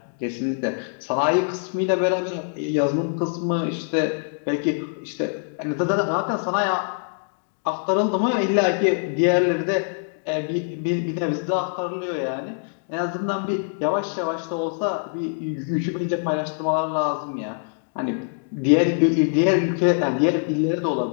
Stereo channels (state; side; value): silent; right; digital silence